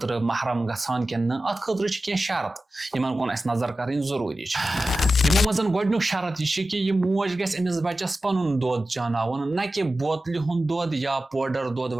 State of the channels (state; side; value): normal; both; correlation 0.94